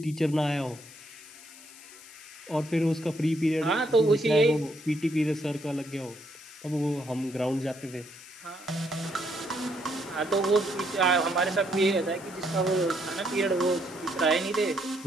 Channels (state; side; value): noise; left; hiss, 19 dB below the sound